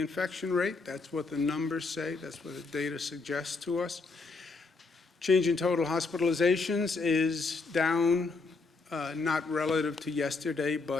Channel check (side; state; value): right; quieter; 4.0 dB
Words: rate. That's what the numbers say. That's what the data suggests to us. Change in total hospitalizations is down, not relative to yesterday,